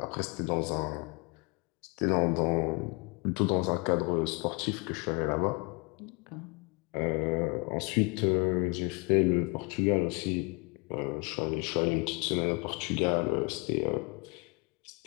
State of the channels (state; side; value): quieter; right; 30.3 dB